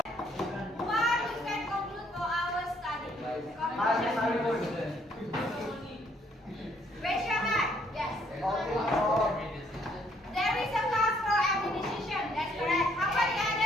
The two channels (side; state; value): both; normal; correlation 0.67